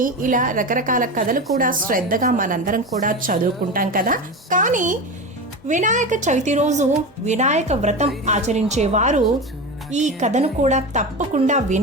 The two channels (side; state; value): both; normal; correlation 0.23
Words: ఇలా రకరకాల కథలు కూడా శ్రద్ధగా మనందరం కూడా చదువుకుంటాం కదా. కానీ వినాయక చవితి రోజు వినాయక వ్రతం ఆచరించేవారు ఈ కథను కూడా తప్పకుండా